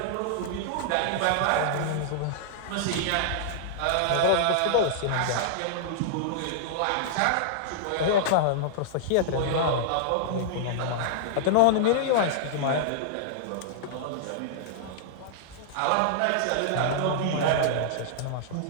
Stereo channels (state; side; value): different; both; correlation -0.01